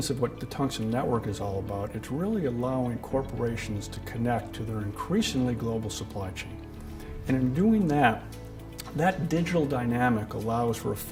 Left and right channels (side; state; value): both; identical; correlation 1.00